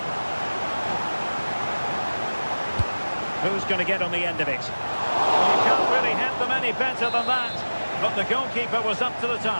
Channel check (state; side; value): inverted; both; correlation -1.00